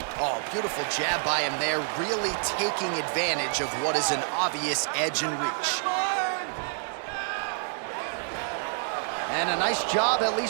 Oh, beautiful jab by him there, really taking advantage of what is an obvious edge and reach. And a nice job at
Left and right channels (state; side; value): silent; left; digital silence